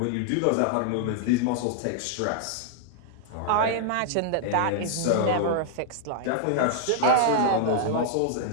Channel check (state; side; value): different; both; correlation -0.01